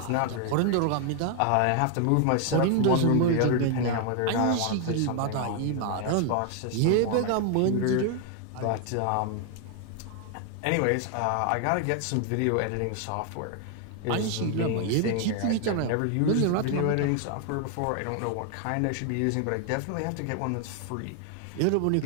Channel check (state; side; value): different; both; correlation 0.00